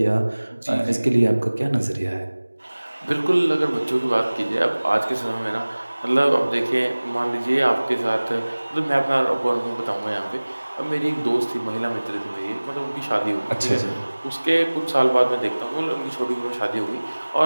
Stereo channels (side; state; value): both; inverted; correlation -1.00